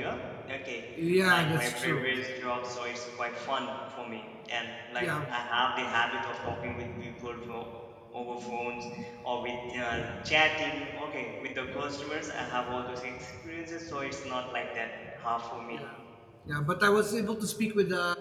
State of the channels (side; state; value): both; identical; correlation 1.00